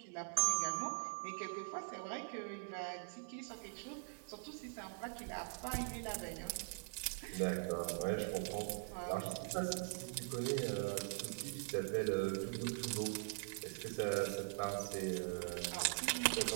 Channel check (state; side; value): silent; left; digital silence